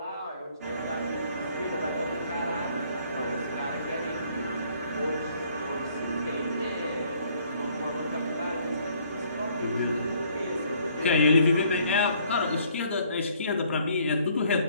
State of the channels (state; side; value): inverted; both; correlation -0.62